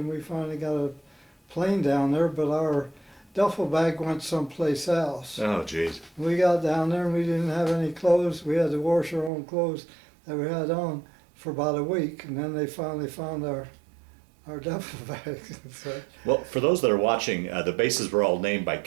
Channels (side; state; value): left; drops out; at 9.3 s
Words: we finally got a plane down there, but our duffel bag went someplace else. Oh, jeez. We got down there and we didn't have any clothes. We had to wash our own clothes that we had on for about a week, and then they finally found our duffel bags. So, well, for those that are watching, the bases were all named by